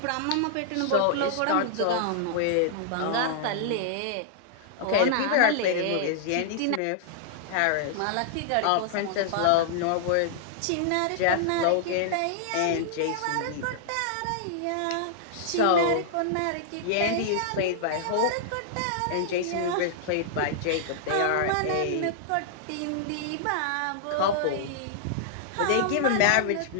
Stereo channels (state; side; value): different; both; correlation -0.01